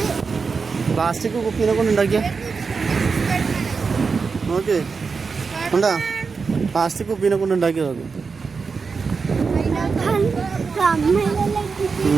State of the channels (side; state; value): left; quieter; 5.0 dB